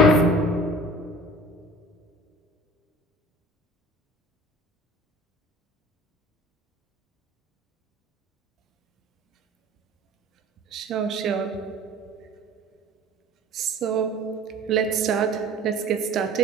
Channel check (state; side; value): normal; both; correlation 0.44